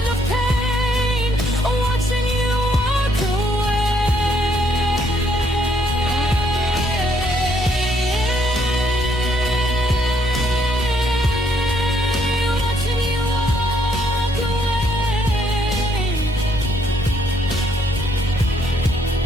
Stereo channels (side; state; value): both; normal; correlation 0.70